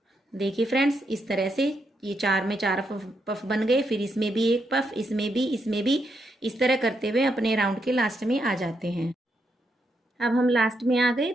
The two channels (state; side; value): normal; both; correlation 0.80